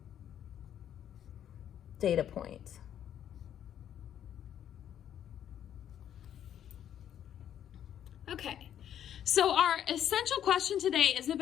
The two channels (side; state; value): right; quieter; 10.1 dB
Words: data point. Okay, so our essential question today is